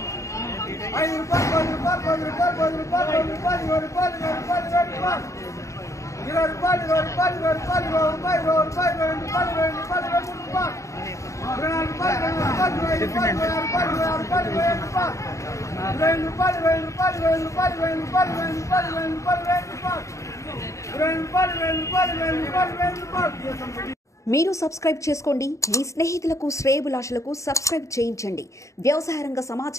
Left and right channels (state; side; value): late; right; 0.15 ms